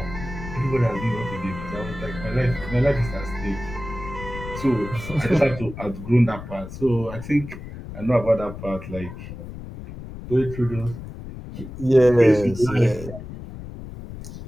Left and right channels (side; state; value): left; noise; rumble, 11 dB below the sound